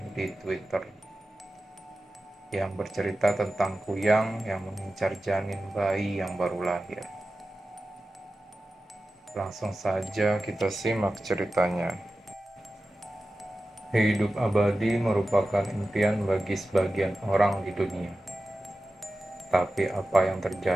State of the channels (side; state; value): both; normal; correlation 0.94